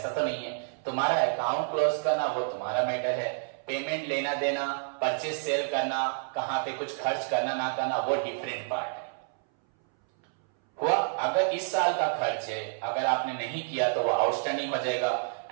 तो नहीं है। तुम्हारा अकाउंट क्लोज करना वो तुम्हारा मैटर है, पेमेंट लेना देना, परचेज सेल करना, कहां पे कुछ खर्च करना ना करना, वो डिफरेंट पार्ट है। हुआ, अगर इस साल का खर्च है, अगर आपने नहीं किया तो वो आउटस्टैंडिंग हो जाएगा,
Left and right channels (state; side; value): silent; left; 59 dB below the other